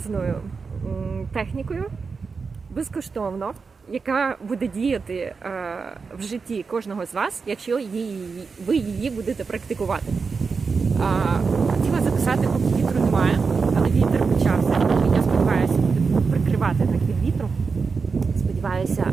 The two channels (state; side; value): quieter; left; 5.0 dB